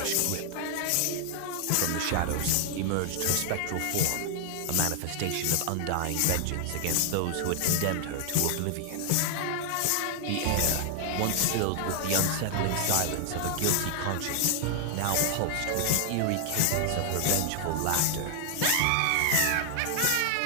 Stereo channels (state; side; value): different; both; correlation 0.00